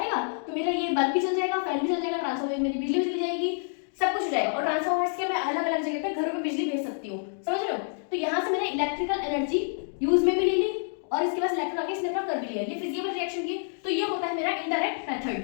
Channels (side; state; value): right; silent; digital silence